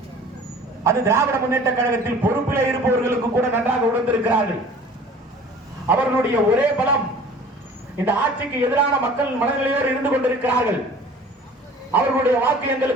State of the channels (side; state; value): both; normal; correlation 0.47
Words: அது திராவிட முன்னேற்ற கழகத்தில் பொறுப்பிலே இருப்பவர்களுக்கு கூட நன்றாக உணர்ந்திருக்கிறார்கள். அவர்களுடைய ஒரே பலம் இந்த ஆட்சிக்கு எதிரான மக்கள் மனநிலையோடு இருந்து கொண்டிருக்கிறார்கள். அவர்களுடைய வாக்கு